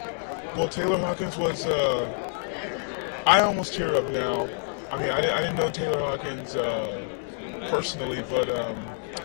Well, Taylor Hawkins was, I almost tear up now. I mean, I didn't know Taylor Hawkins personally, but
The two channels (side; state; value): right; silent; 60 dB below the other